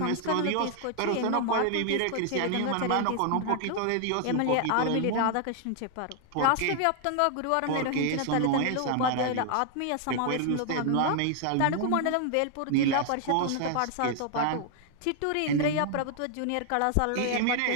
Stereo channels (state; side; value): different; both; correlation 0.00